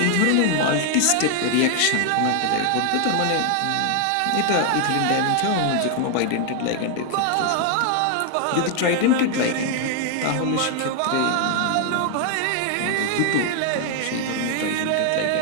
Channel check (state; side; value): different; both; correlation 0.00